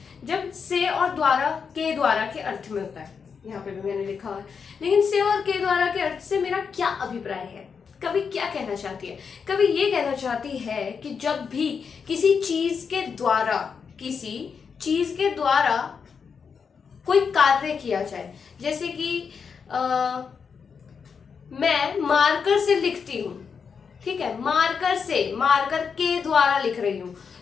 जब से और द्वारा, के द्वारा के अर्थ में होता है। यहाँ पे भी मैंने लिखा हुआ है, लेकिन से और के द्वारा के अर्थ से मेरा क्या अभिप्राय है, कभी क्या कहना चाहती है। कभी ये कहना चाहती है कि जब भी किसी चीज के द्वारा कोई कार्य किया जाए, जैसे कि मैं मार्कर से लिखती हूँ, ठीक है, मार्कर के द्वारा लिख रही हूँ,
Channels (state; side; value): quieter; right; 6.1 dB